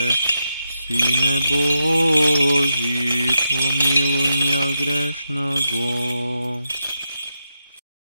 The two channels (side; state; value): both; inverted; correlation -0.86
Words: Сине Божий, помилуй меня грешного.